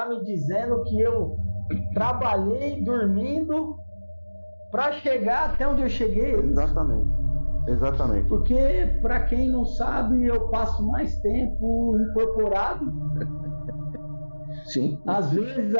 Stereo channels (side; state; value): both; inverted; correlation -1.00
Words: me dizendo que eu trabalhei dormindo para chegar até onde eu cheguei? Exatamente. Porque, para quem não sabe, eu passo mais tempo incorporado. Sim. Às vezes